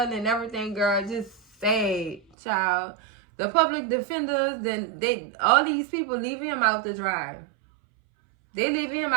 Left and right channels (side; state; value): left; drops out; at 2.2 s